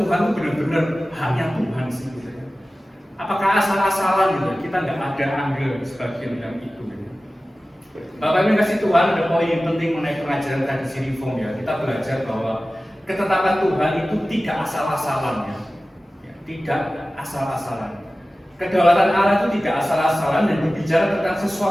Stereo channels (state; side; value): normal; both; correlation 0.96